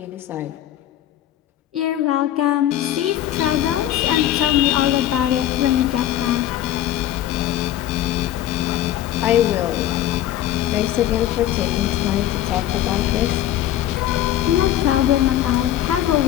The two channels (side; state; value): right; quieter; 12.4 dB